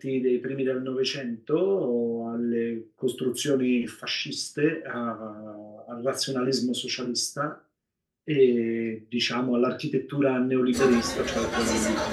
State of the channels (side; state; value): both; identical; correlation 1.00